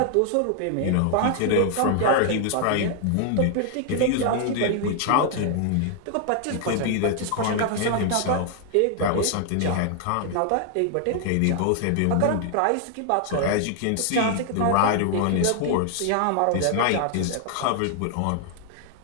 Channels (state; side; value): different; both; correlation 0.00